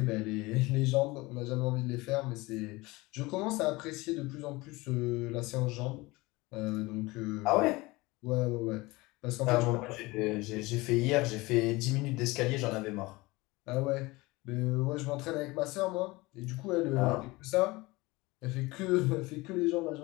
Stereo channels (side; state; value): right; quieter; 22.2 dB